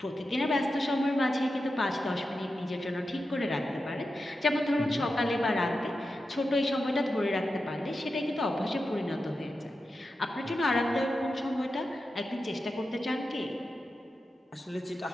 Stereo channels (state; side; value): normal; both; correlation 0.90